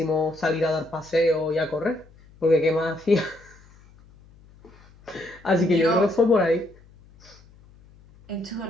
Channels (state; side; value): noise; left; hum, 26 dB below the sound